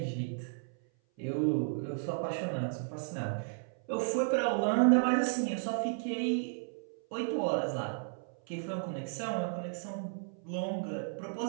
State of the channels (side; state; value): left; silent; 55 dB below the other